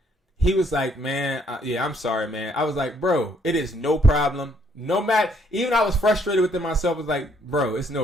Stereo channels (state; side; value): normal; both; correlation 0.68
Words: He was like, man, yeah, I'm sorry, man. I was like, bro, it is no problem. No matter, even I was frustrated within myself. I was like, bro, it's